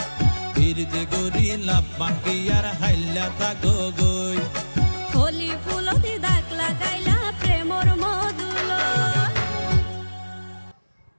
ফিরিতে গরিলা পান্টি আর হাইলা তাকো গই ওলি ফুলতে দাগ লাগাইলা প্রেমর মধুলয়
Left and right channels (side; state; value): both; inverted; correlation -1.00